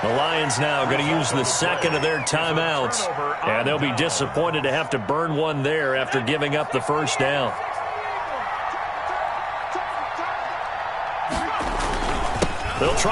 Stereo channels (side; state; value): both; identical; correlation 1.00